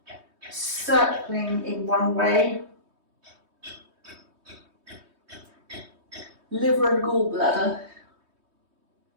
circling in one way, liver and gallbladder,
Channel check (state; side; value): late; left; 3.2 ms